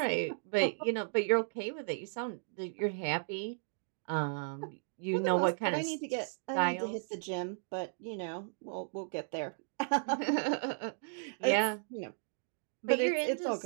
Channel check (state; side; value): silent; left; digital silence